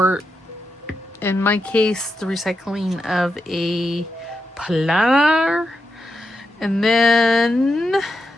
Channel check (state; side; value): normal; both; correlation 0.86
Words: in my case, the recycling of a planner. And then